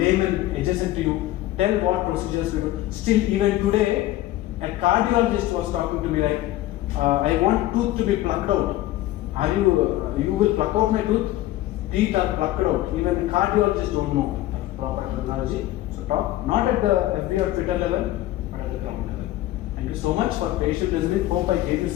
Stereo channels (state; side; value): quieter; right; 15.4 dB